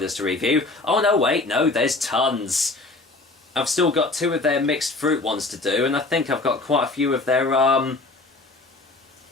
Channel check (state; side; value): quieter; right; 3.3 dB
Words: to review. Oh no, wait, no, there's tons. I've still got two of their mixed fruit ones to do, and I think I've got quite a few of their,